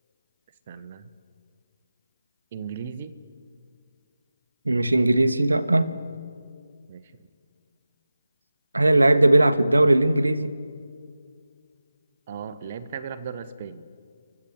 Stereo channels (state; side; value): inverted; both; correlation -0.95